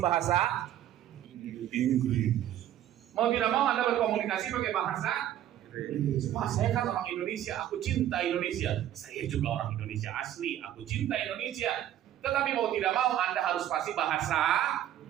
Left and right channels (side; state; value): left; quieter; 11.8 dB